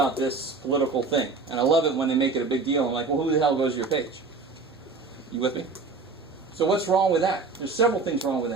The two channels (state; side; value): quieter; left; 4.3 dB